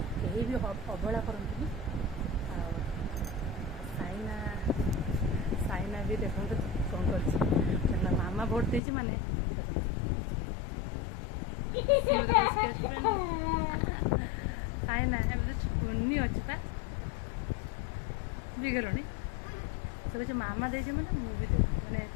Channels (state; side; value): drops out; right; at 8.8 s